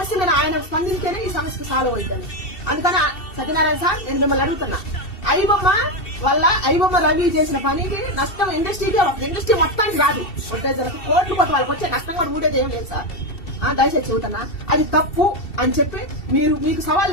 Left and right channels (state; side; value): late; right; 2.7 ms